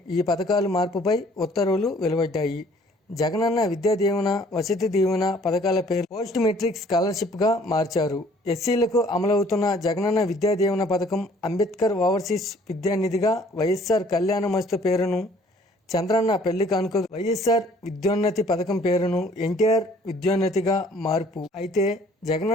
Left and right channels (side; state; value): both; normal; correlation 0.57